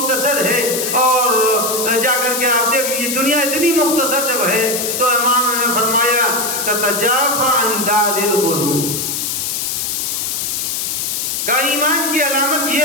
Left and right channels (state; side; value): noise; left; hiss, 1 dB below the sound